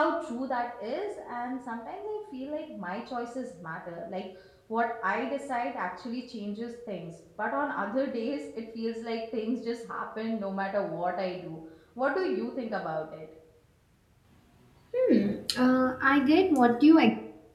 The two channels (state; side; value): identical; both; correlation 1.00